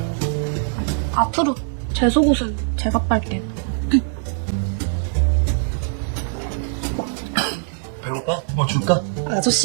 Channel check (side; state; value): left; silent; digital silence